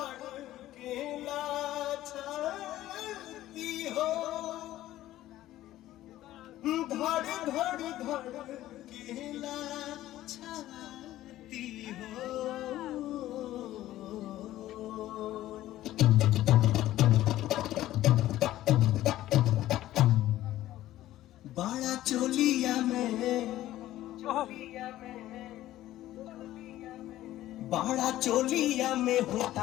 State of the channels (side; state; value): right; quieter; 14.5 dB